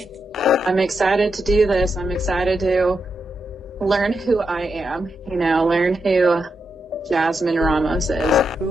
I'm excited to do this. I'm excited to learn who I am, learn who Jasmin Ramos is.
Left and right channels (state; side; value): normal; both; correlation 0.85